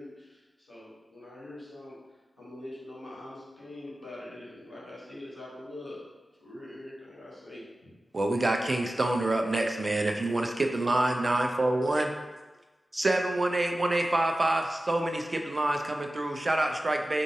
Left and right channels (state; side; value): normal; both; correlation 0.95